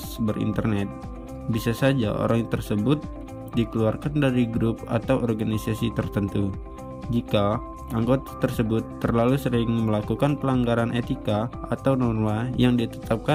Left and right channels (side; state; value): both; identical; correlation 1.00